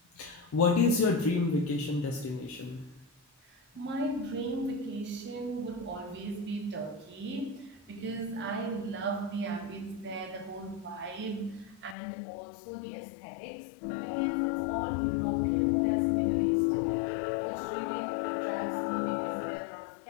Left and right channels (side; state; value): right; drops out; at 12.0 s